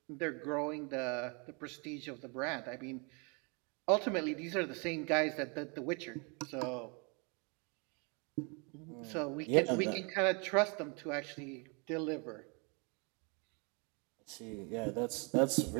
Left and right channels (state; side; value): quieter; left; 33.2 dB